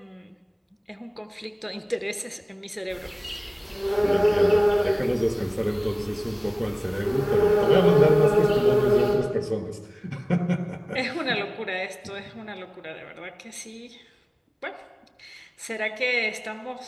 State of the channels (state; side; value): identical; both; correlation 1.00